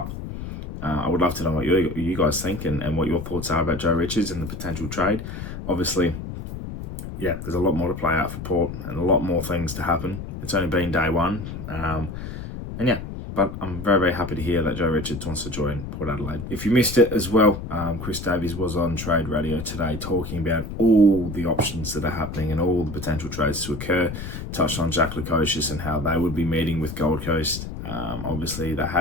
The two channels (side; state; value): left; noise; rumble, 8 dB below the sound